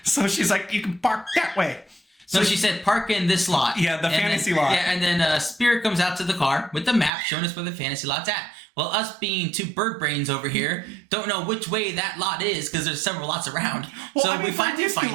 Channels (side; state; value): left; drops out; at 7.1 s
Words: So she's like, you can park that way. So she said, park in this lot. Yeah, the fantasy lot. Yeah, and then Spirit comes out to the car with the map showing us where the fantasy lot's at. Well, us being two bird brains over here don't know which way that lot is because there's several lots around. Well, so I mean, we finally find